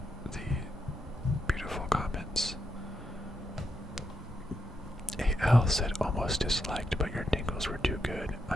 Comments. AL said almost disliked, but your Dingles were too good.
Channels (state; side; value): normal; both; correlation 0.83